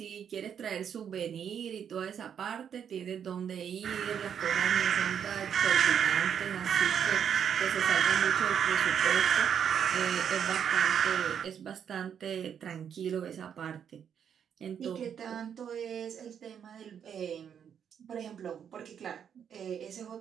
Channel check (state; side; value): quieter; left; 8.2 dB